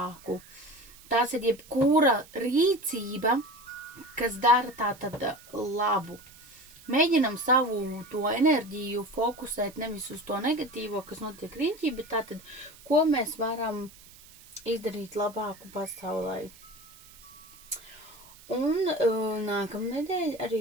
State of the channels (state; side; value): noise; right; hiss, 22 dB below the sound